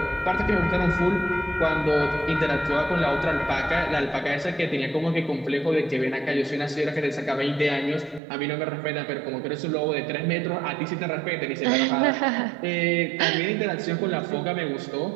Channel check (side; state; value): left; drops out; at 8.2 s